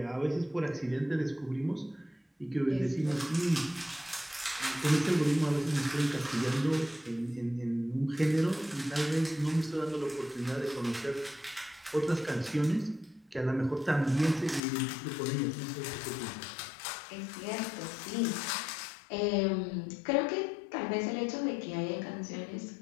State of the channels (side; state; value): right; drops out; at 14.6 s